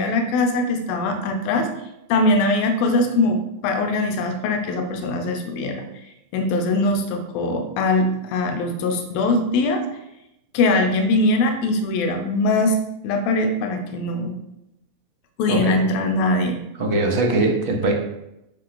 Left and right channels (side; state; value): right; late; 12 ms